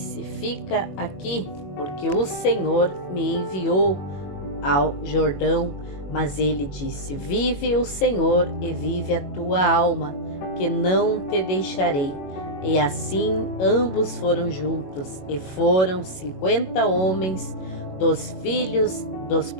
Fica aqui, porque o Senhor me enviou ao Jordão. Mas ele disse: Vive o Senhor e vive a tua alma, que não te deixarei. E assim ambos foram juntos, e foram 50 homens dos filhos dos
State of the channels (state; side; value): late; right; 21 ms